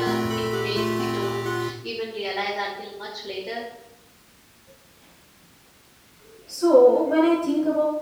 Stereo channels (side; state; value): both; identical; correlation 1.00